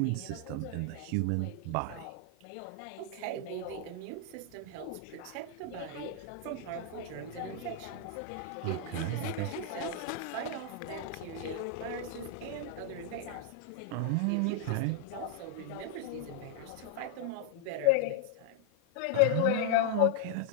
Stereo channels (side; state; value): both; different; correlation 0.00